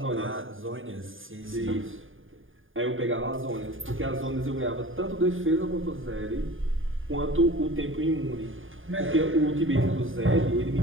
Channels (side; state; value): left; late; 0.59 ms